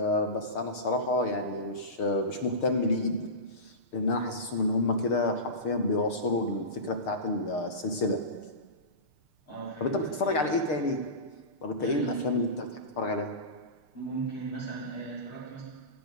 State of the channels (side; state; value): right; late; 6.6 ms